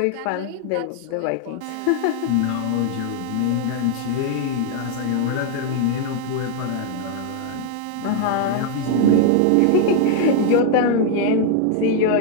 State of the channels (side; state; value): both; different; correlation 0.00